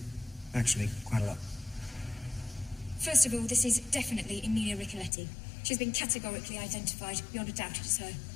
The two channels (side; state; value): right; drops out; at 5.1 s